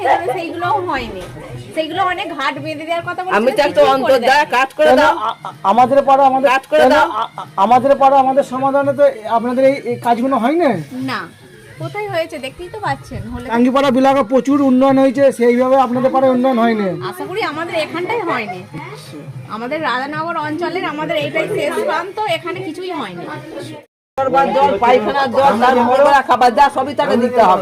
সেইগুলোও হয়নি, সেইগুলো অনেক ঘাট বেঁধে দেওয়ার কথা বলছে। আমি তো একটা অন্তর্দা কাজ করে দাও, আমাদের পাড়া আমাদের কাজ করে দাও। আমাদের পাড়া আমাদের সমাধানে তো আপনাদের এই কাজগুলো হয় না। না, কোথায় হয়েছে দেখতেই তো পাচ্ছেন। হলে টাঙ্গিপাড়া বিলাকা প্রচুর উন্নয়ন হয়েছে, সেইভাবে আপনাদের পাড়ায় উন্নয়ন হয়নি। আশা করি আমাদের এখানটাই হয়নি, আমাদের রাধানগর অঞ্চলের আমাদের এইটাই শেষ প্রান্ত, এখানে কিছুই হয়নি। জল, পায়খানার জল, তার মরবরা খাবার যা সবই তাকে দিতে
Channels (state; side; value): identical; both; correlation 1.00